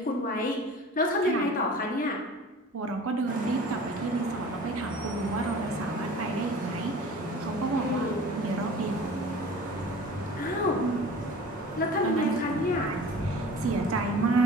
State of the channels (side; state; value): both; normal; correlation 0.42